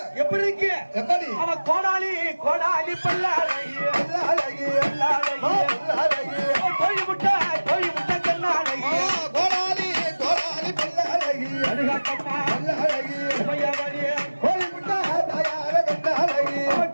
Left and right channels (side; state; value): both; inverted; correlation -1.00